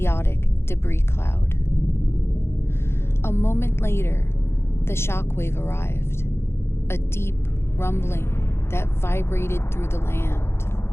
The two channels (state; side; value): late; right; 0.12 ms